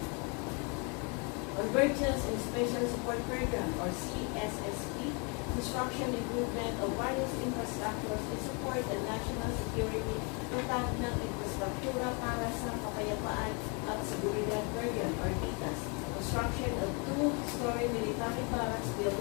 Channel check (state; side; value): quieter; right; 33.8 dB